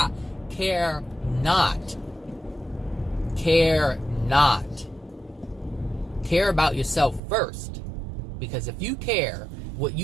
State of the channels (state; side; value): drops out; left; at 7.2 s